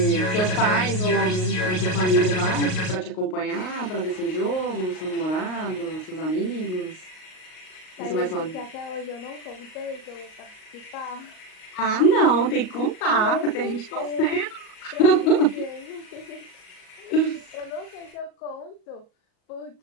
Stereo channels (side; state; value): right; late; 38 ms